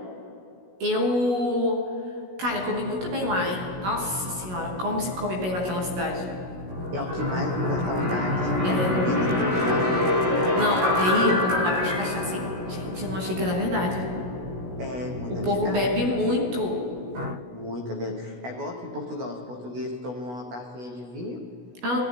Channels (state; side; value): late; left; 16 ms